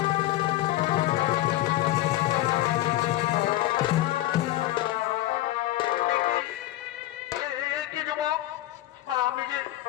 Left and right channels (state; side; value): quieter; right; 15.4 dB